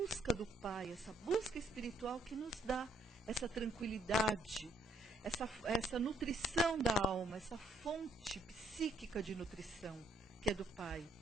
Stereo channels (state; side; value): normal; both; correlation 0.67